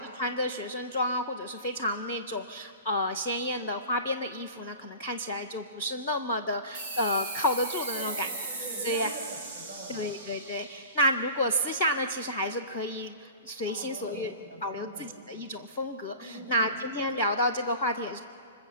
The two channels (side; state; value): both; inverted; correlation -0.38